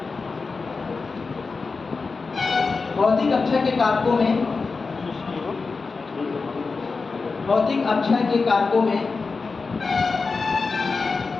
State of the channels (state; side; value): quieter; right; 4.4 dB